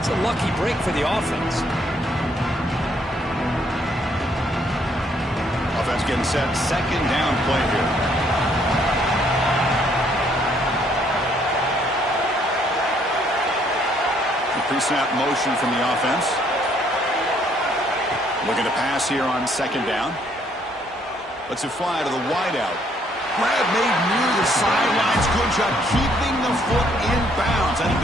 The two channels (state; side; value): normal; both; correlation 0.67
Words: a lucky break for the offense. Offense getting set. Second down play here. The pre-snap motion from the offense. Looking to pass here on second down. Lets it fly to the wideout. Grab made near the sidelines. Good job keeping the foot in bounds. That'll